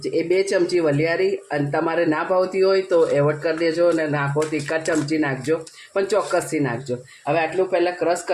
એ 2 ચમચી વલિયારી. અને તમારે ના ભાવતી હોય તો એવોર્ડ કરી દેજો અને નાખો તો 1 ચમચી નાખજો, પણ ચોક્કસથી નાખજો. હવે આટલું પહેલાં ક્રશ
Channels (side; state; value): both; identical; correlation 1.00